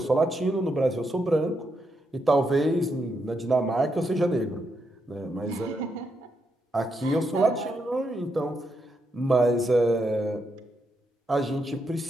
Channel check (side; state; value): both; normal; correlation 0.81